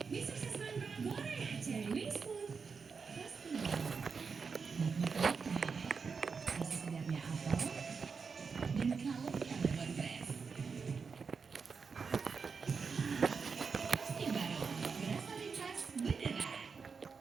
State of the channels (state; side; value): quieter; left; 5.4 dB